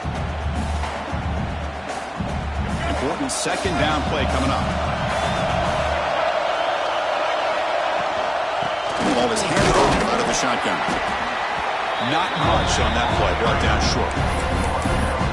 Important second down play coming up. The ball is handed over out of the shotgun. Not much on that play. Brought down short.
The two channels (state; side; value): identical; both; correlation 1.00